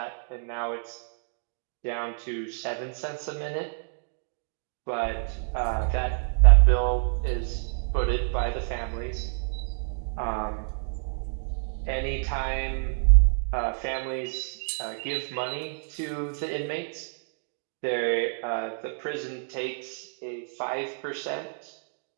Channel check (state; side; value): silent; left; digital silence